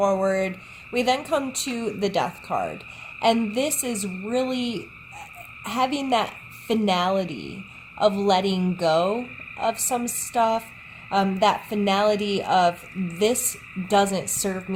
we then come to the Death card, and this is really having that finality of letting go of some stuff. That finality of, this doesn't serve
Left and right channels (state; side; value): identical; both; correlation 1.00